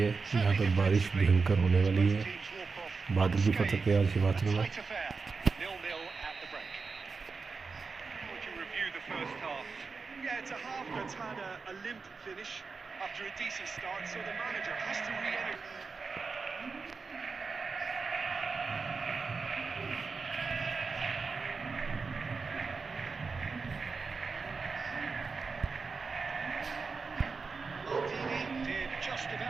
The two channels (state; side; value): quieter; left; 4.6 dB